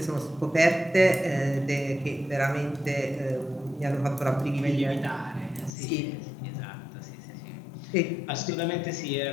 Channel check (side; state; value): right; drops out; at 5.7 s